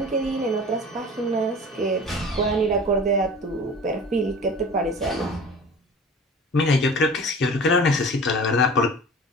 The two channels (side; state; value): both; normal; correlation 0.40